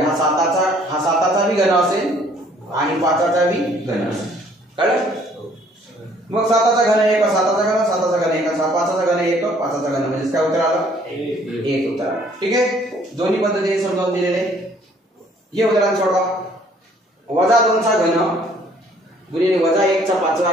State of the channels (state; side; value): normal; both; correlation 0.60